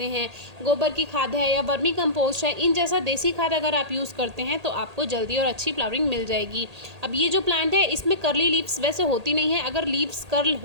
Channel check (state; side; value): late; left; 1.8 ms